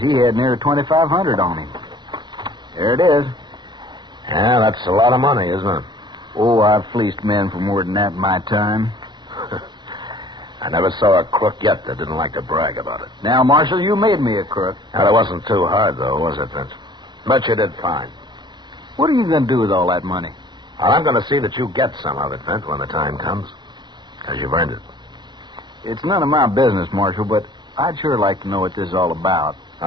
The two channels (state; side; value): late; left; 0.21 ms